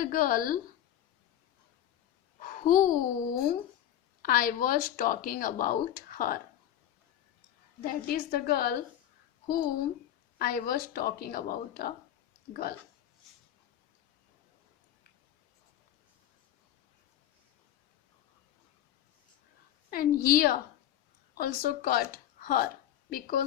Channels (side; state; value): right; quieter; 11.4 dB